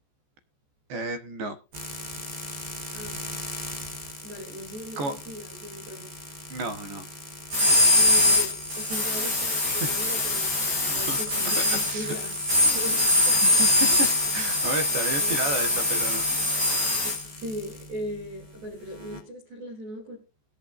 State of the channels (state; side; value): late; left; 14 ms